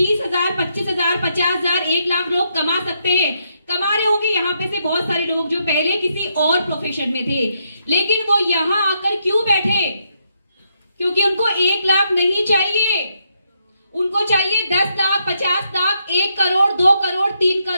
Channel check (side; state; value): both; inverted; correlation -0.78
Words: 25,000, 50,000, 1 लाख लोग कमा सकते हैं। कमा रहे होंगे यहाँ पे से बहुत सारे लोग जो पहले किसी और प्रोफेशन में थे, लेकिन वो यहाँ आकर क्यों बैठे? क्योंकि उनको 1 लाख नहीं चाहिए, उनको चाहिए 10 लाख, 50 लाख, 1 करोड़, 2 करोड़, 3